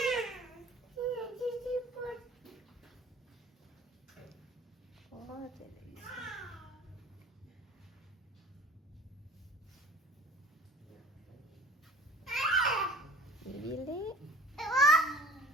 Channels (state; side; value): normal; both; correlation 0.46